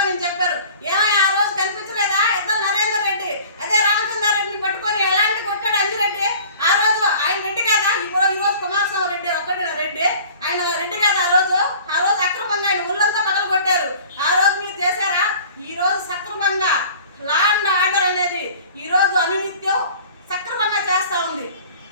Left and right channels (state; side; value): inverted; both; correlation -0.46